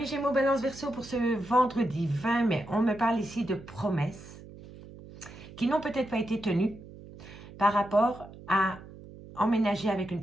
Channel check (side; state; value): right; noise; hum, 17 dB below the sound